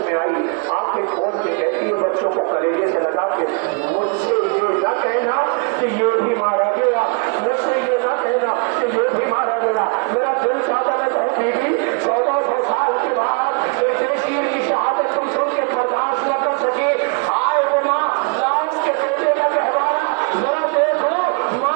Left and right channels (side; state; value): left; quieter; 33.9 dB